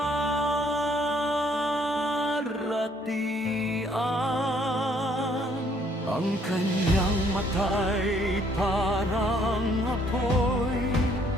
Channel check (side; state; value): both; normal; correlation 0.65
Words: Ang kanyang mata'y parang apoy,